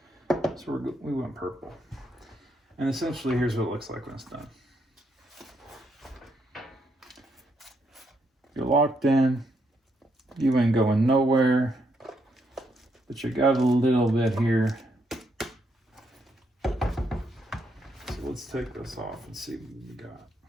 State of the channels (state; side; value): normal; both; correlation 0.77